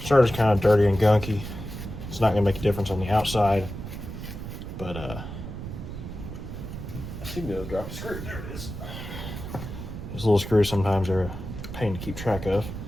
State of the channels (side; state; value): right; noise; rumble, 9 dB below the sound